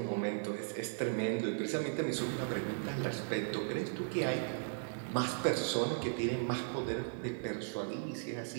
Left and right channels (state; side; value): silent; left; digital silence